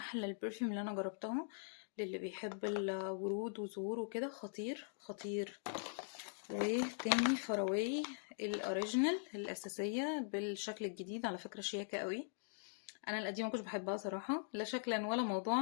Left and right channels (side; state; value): right; silent; digital silence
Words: البرفيوم اللي انا جربتها. للي بيحب الورود وزهور وكده، خطير خطير. وتاني فراوي الاوريجينال الاساسيه بالشكل الجديد، على فكره شياكه قوي. انا القديمه ما كنتش بحبها صراحه، لا شكلا ولا